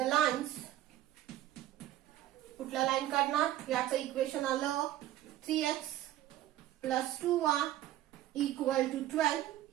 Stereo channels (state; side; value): quieter; left; 13.5 dB